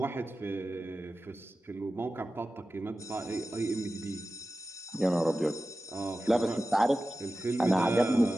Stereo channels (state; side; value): normal; both; correlation 0.94